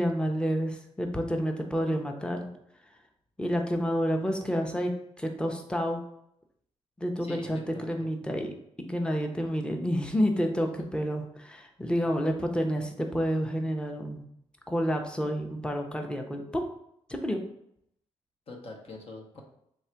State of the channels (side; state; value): both; normal; correlation 0.92